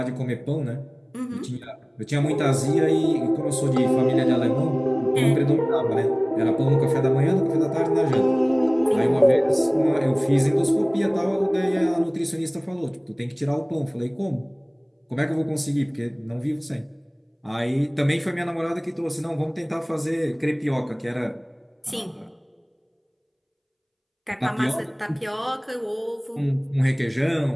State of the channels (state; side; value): identical; both; correlation 1.00